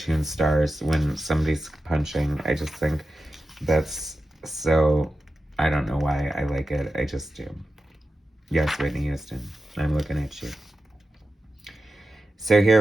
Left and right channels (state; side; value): normal; both; correlation 0.92